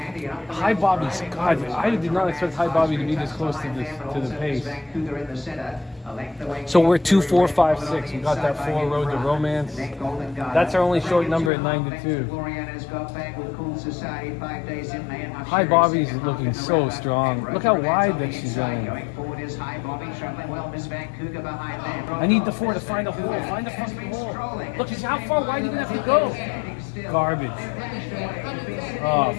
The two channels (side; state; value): right; drops out; at 11.5 s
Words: And up the High rails, Bobby's, Brian God, Wilson I did not expect High Bobby to be this close to the pace. Vancouver in the center. A length away. So we're 2, 4, 5, 6. We got that 4 road to romance. That's our only short number at 9 to 2. High Bobby's looking so strong. Look how wide that she's running. I need the 4 to find a hole. Find a fucking hole. Look, how far wide are you gonna have to go? Garbage. Oh,